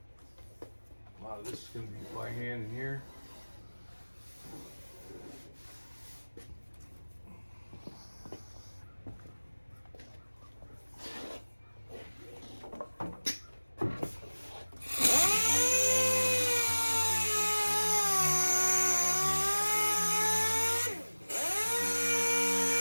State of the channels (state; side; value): inverted; both; correlation -1.00